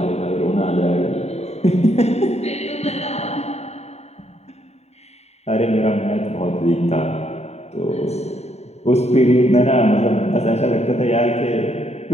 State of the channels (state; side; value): late; right; 0.31 ms